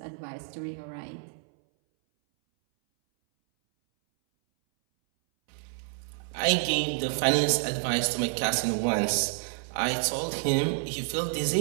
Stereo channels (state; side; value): silent; left; 59 dB below the other